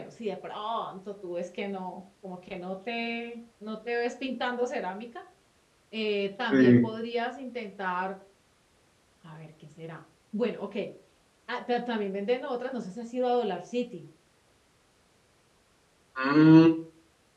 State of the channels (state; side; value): identical; both; correlation 1.00